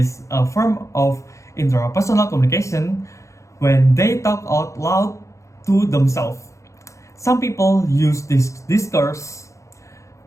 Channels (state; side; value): late; right; 0.15 ms